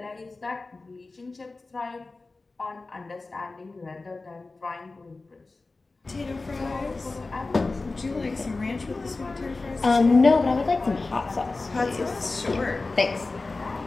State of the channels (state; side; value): quieter; right; 3.6 dB